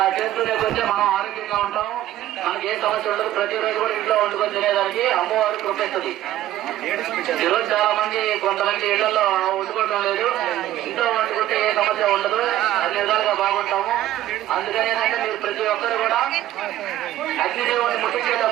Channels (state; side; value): quieter; left; 13.7 dB